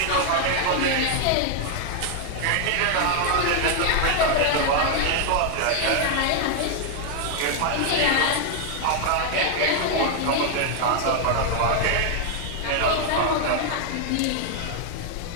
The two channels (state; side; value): different; both; correlation 0.00